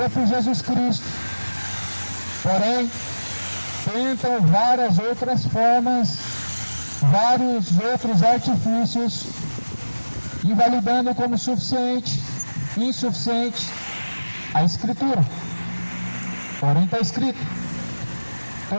por Jesus Cristo, porém tentam várias outras formas, vários outros artifícios, invalidando como suficiente, insuficiente a Escritura. Porém está escrito:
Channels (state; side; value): inverted; both; correlation -1.00